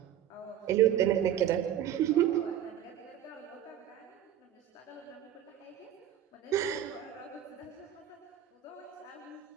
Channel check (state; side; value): quieter; left; 10.6 dB